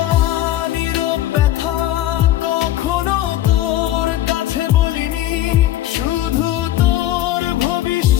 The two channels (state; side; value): quieter; right; 13.6 dB